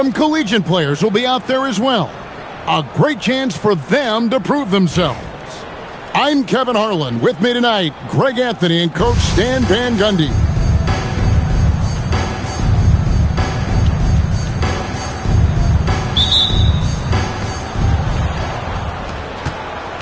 collegiate players will be out there as well. A great chance for them to prove themselves. I'm Kevin Harlan. With me tonight, Greg Anthony and Coach Stan Van Gundy.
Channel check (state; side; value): identical; both; correlation 1.00